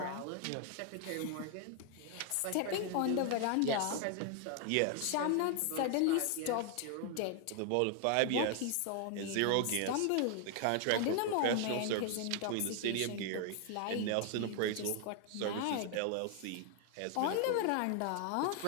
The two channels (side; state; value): both; different; correlation 0.00